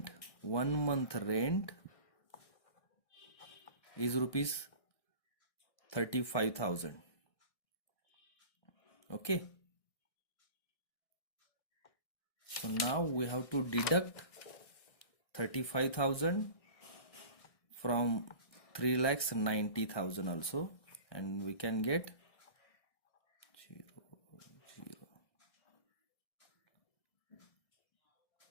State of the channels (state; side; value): late; right; 1.6 ms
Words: is rupees 35,000. Okay, so now we have to deduct 35,000 from 3,90,000 also, and we can get 0, 0.